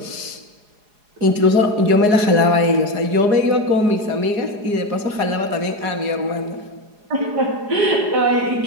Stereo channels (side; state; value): left; late; 4.8 ms